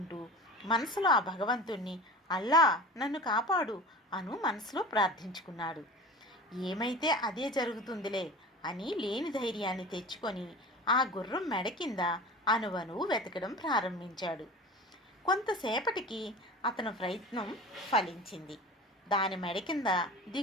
మనసులో ఆ భగవంతుణ్ణి అల్లా నన్ను కాపాడు అను మనసులో ప్రార్థించుకున్నాడు. ఏమైతే అదే జరుగుతుందిలే అని లేని ధైర్యాన్ని తెచ్చుకొని ఆ గుర్రం మెడ కింద అణువణువు వెతకడం ప్రారంభించాడు. కొంతసేపటికి అతని ప్రయత్నం ఫలించింది. దాని మెడ కింద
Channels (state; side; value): normal; both; correlation 0.36